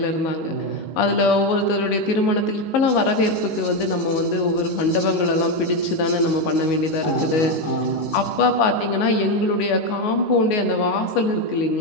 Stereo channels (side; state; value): right; late; 19 ms